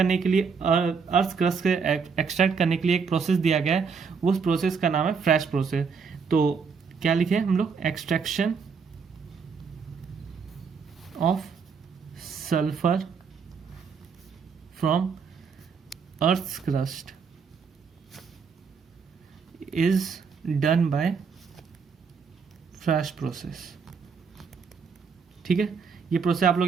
के लिए, अर्थ क्रस्ट के एक्सट्रैक्ट करने के लिए एक प्रोसेस दिया गया है। उस प्रोसेस का नाम है फ्रेश प्रोसेस। तो क्या लिखे हम लोग? Extraction of sulfur from earth's crust is done by fresh process। ठीक है, ये प्रोसेस आप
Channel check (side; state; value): left; quieter; 5.7 dB